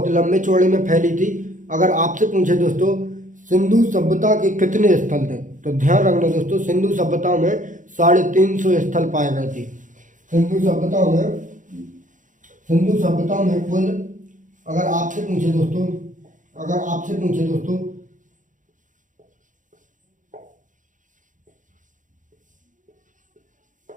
लंबे चौड़े में फैली थी। अगर आपसे पूछे दोस्तों सिंधु सभ्यता के कितने स्थल थे, तो ध्यान रखना दोस्तों, सिंधु सभ्यता में 350 स्थल पाए गए थे। सिंधु सभ्यता में कुल, अगर आपसे पूछे दोस्तों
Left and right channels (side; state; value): left; late; 0.37 ms